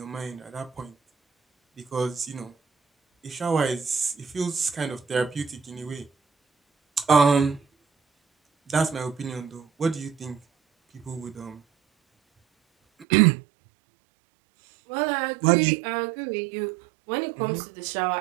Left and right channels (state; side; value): drops out; left; at 13.1 s